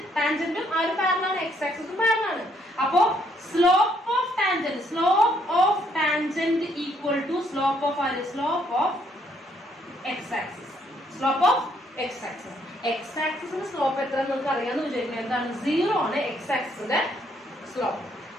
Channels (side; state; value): both; normal; correlation 0.70